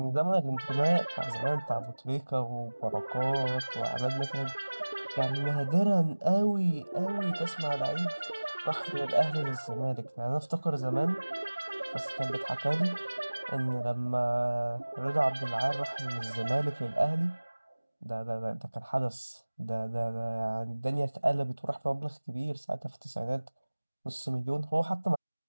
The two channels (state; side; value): inverted; both; correlation -1.00